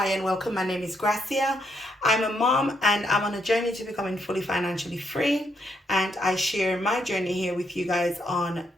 and welcome. My name is Gracia. I'm a mom and I'm on a journey to becoming fully financially free, and I share my journey here with you guys on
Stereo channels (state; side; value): normal; both; correlation 0.76